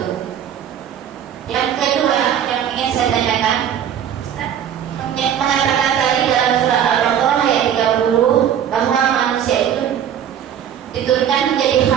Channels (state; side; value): quieter; left; 9.4 dB